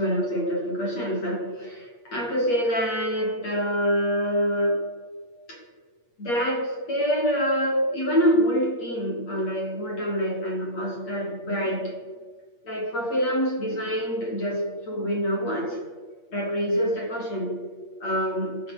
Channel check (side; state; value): right; late; 8.5 ms